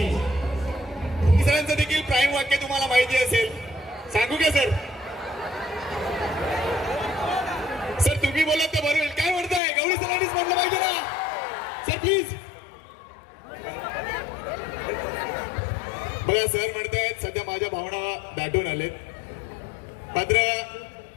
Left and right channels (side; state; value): right; drops out; at 9.6 s